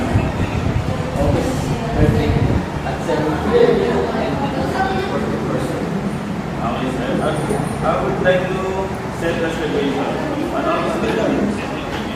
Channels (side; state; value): both; identical; correlation 1.00